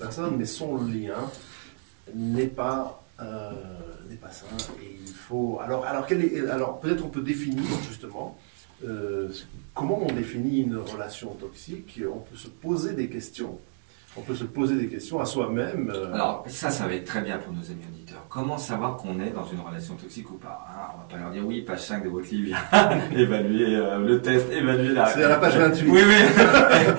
mais son lien n'est pas sain. Et il faut. Alors peut-être on peut définir justement comment on définit une relation toxique. On peut se poser des questions. On peut se poser des questions à soi-même. Alors, ça va être très bien pour nos amis auditeurs. Comment savoir qu'on est dans une relation toxique ou pas, hein? On va pas leur dire, oui, page 5 de votre livre, évaluer le test, évaluer la... C'est à la page 28. Oui,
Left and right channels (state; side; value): silent; left; digital silence